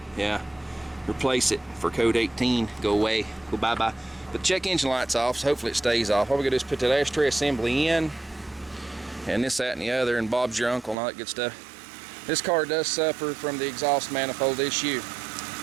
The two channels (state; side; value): drops out; left; at 11.0 s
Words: Yeah. Replace it for code 18. Go away. Go bye-bye. But check engine light's off, so hopefully it stays off. All we gotta do is put that ashtray assembly in, and this, that, and the other, and Bob's your uncle and all that good stuff. This car does suffer from the exhaust manifold issue.